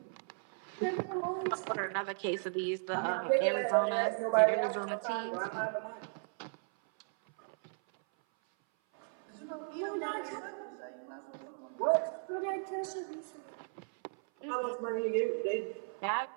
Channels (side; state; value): left; silent; 54 dB below the other